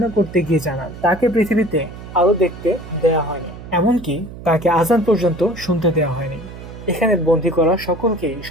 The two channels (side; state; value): right; noise; hum, 14 dB below the sound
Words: করতে গিয়ে জানান, তাকে পৃথিবীতে আলো দেখতে দেয়া হয়নি, এমনকি তাকে আজান পর্যন্ত শুনতে দেওয়া হয়নি। এখানে বন্দী করা সকলকেই